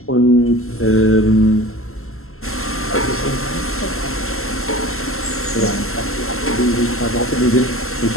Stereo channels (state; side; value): late; right; 0.62 ms